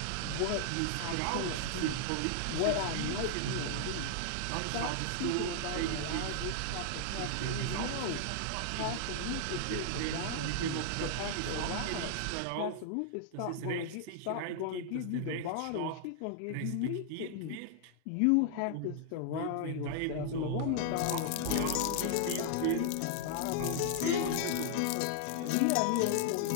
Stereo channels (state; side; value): different; both; correlation -0.01